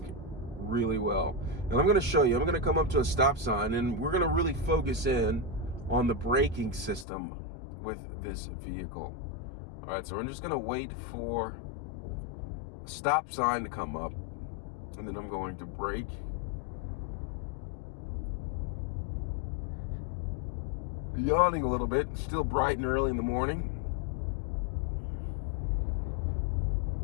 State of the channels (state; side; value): drops out; right; at 7.1 s